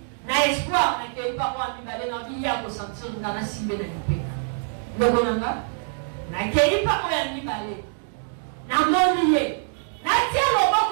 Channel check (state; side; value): silent; left; digital silence